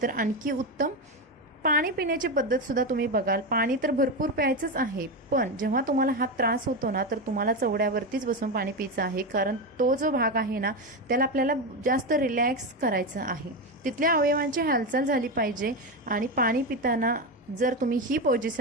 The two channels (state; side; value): normal; both; correlation 0.14